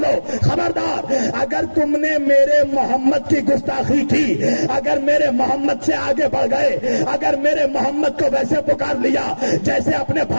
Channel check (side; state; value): both; inverted; correlation -1.00